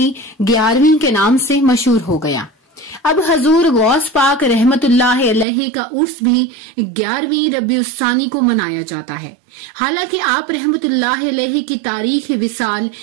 11वीं के नाम से मशहूर हो गया। अब हजूर गौस पाक रहमतुल्लाह अलैहि का उर्स भी 11वीं रबीउस्सानी को मनाया जाता है। हालांकि आप रहमतुल्लाह अलैहि की तारीख विसाल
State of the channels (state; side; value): drops out; left; at 5.5 s